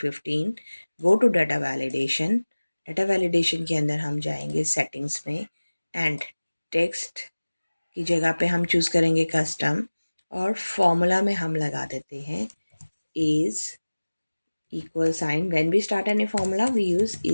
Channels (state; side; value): inverted; both; correlation -1.00